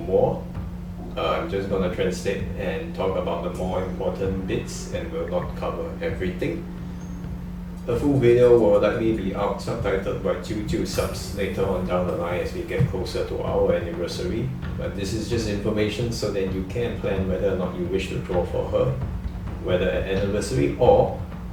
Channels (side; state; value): both; identical; correlation 1.00